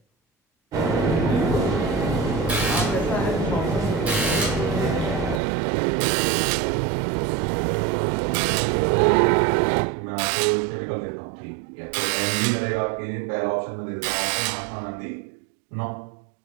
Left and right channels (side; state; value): left; drops out; at 5.4 s